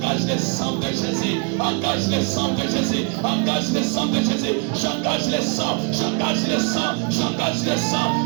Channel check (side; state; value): left; quieter; 34.7 dB